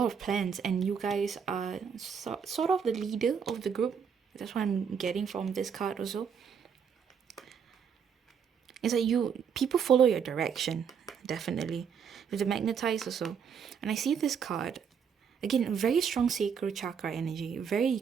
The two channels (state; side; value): quieter; left; 7.0 dB